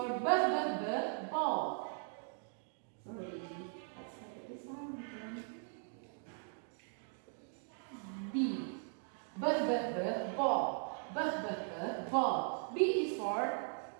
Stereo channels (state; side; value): silent; left; 52 dB below the other